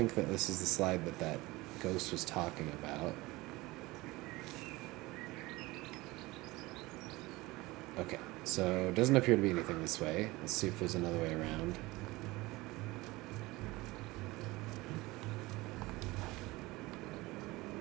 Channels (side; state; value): left; quieter; 21.0 dB